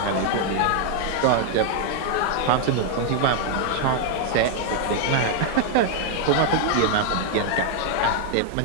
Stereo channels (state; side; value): different; both; correlation 0.00